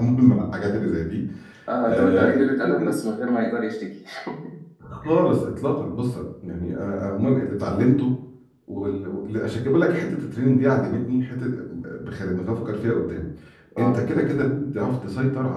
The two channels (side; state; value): both; identical; correlation 1.00